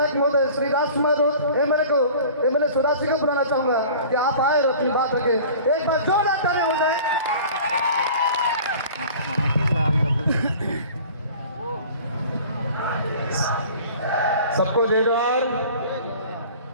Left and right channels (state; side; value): inverted; both; correlation -0.44